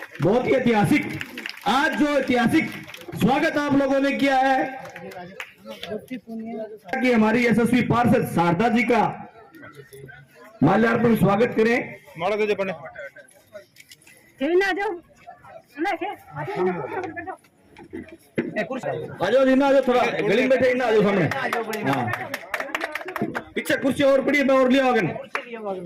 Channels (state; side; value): identical; both; correlation 1.00